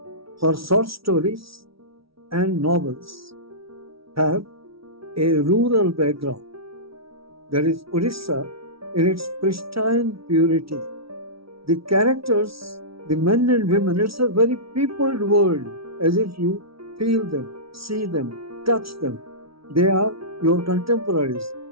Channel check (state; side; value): late; left; 0.75 ms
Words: Her short stories and novels have a rural background. There is Odisha in its pristine purity. The characters, the men and women, it's a very peopled world, as if you feel them, see them, touch them. They are your contemporaries.